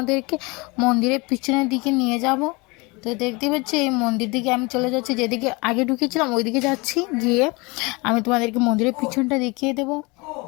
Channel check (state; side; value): quieter; right; 26.7 dB